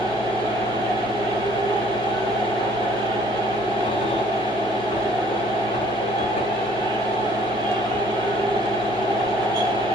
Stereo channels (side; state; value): both; normal; correlation 0.58